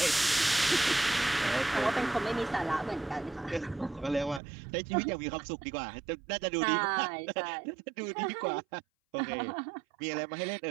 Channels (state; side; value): drops out; left; at 4.4 s